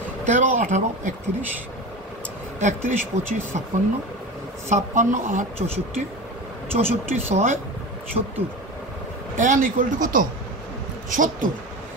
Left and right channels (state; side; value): normal; both; correlation 0.29